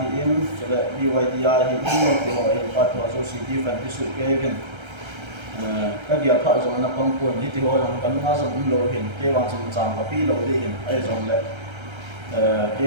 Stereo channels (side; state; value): left; late; 1.3 ms